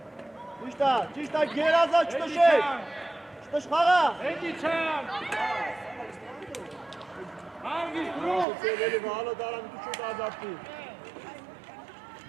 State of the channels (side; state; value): left; drops out; at 8.5 s